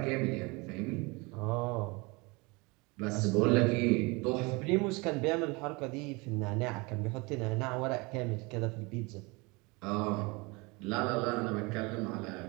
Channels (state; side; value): quieter; left; 26.5 dB